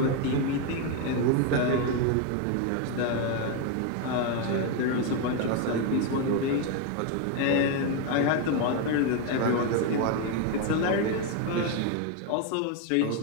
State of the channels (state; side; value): different; both; correlation 0.02